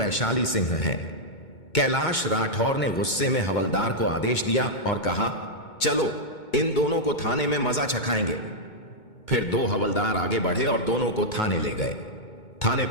सिंह है। कैलाश राठौर ने गुस्से में हवलदार को आदेश दिया और कहा, चलो, इन दोनों को थाने में मजा चखाएंगे। फिर 2 हवलदार आगे बढ़े और दोनों को थाने ले गए। थाने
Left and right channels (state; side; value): late; right; 2.2 ms